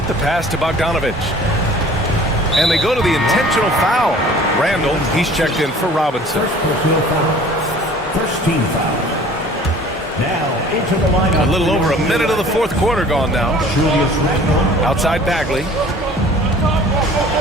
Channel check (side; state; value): both; normal; correlation 0.49